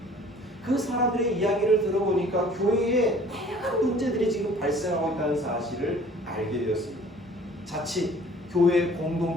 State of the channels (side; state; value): both; normal; correlation 0.51